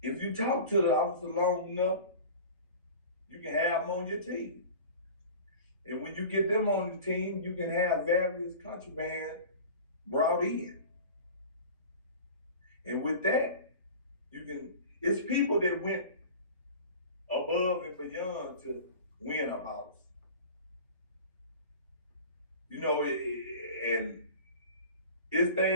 if you talk to the officer long enough, you can have them on your team. And when you get them on the team, you can have various contraband brought in. And with that, it's people that went above and beyond to win a boss. You know, and it's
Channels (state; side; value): inverted; both; correlation -0.38